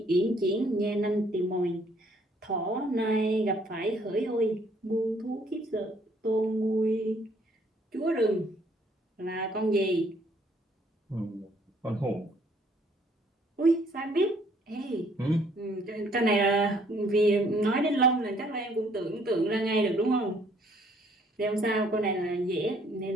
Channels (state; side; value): normal; both; correlation 0.64